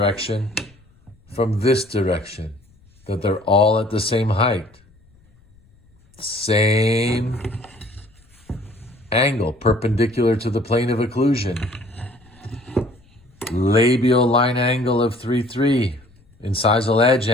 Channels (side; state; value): left; noise; rumble, 30 dB below the sound